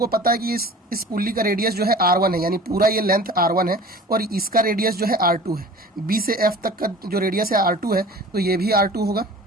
पता है कि इस पुल्ली का रेडियस जो है r1 है, यानी पूरा ये लेंथ r1 है और इसका रेडियस जो है r2 है। b से f तक का जो रेडियस है r2 है, तो ये भी r2 होगा,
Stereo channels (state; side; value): normal; both; correlation 0.41